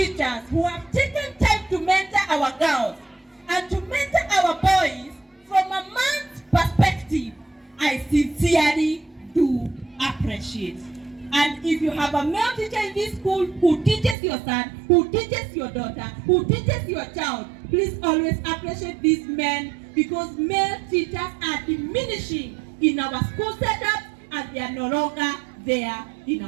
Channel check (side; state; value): left; drops out; at 14.2 s